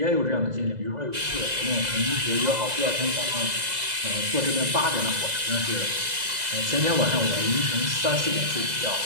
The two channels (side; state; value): left; late; 2.0 ms